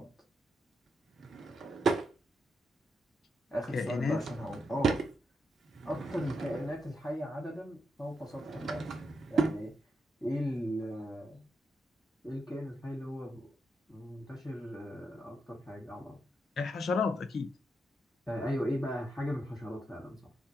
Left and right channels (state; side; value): normal; both; correlation 0.83